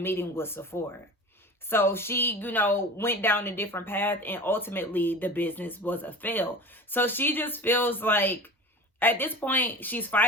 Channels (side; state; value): both; normal; correlation 0.35